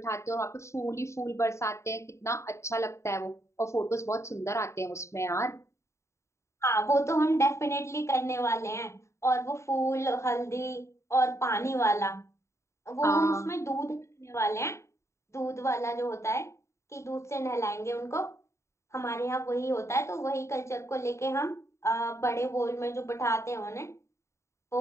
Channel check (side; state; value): right; late; 0.14 ms